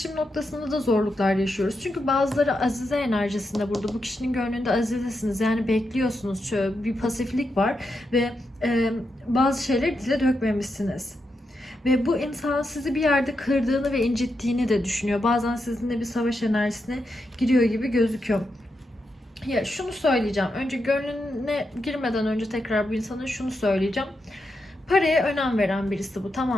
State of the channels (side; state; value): both; normal; correlation 0.85